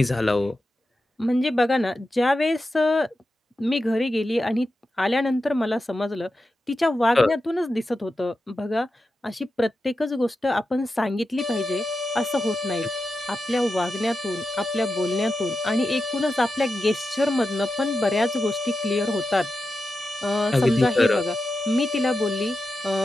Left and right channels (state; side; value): normal; both; correlation 0.90